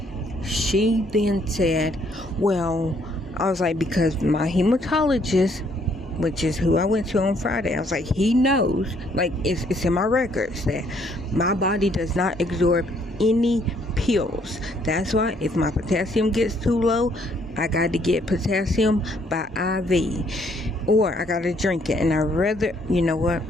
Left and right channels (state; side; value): normal; both; correlation 0.67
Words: She then said, well, I was like, because my hematologist, which is who I went to on Friday, I was like, he knows, like, it's in my records that my body does not absorb any pills. That's why if my potassium gets too low, I got to get potassium by IV, or I got to drink it. And I'd rather,